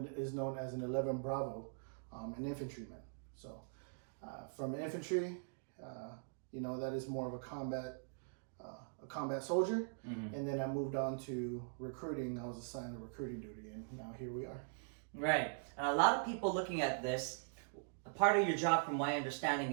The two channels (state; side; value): silent; left; digital silence